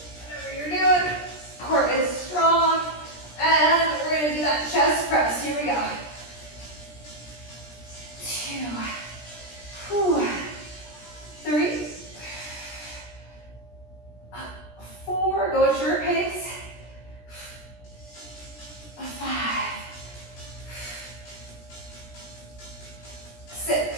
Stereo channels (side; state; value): right; late; 17 ms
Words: Whatever you're doing. Core is strong. And we're gonna do that chest press. Here we go. 2, 3, 4. Go at your pace. 5,